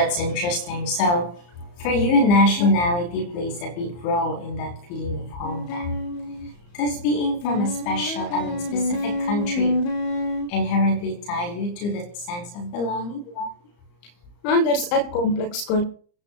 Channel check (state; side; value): late; right; 34 ms